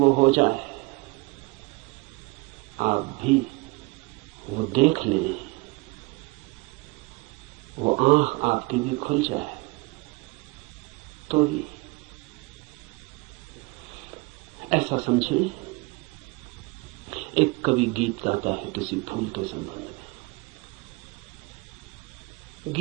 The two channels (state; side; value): quieter; left; 25.5 dB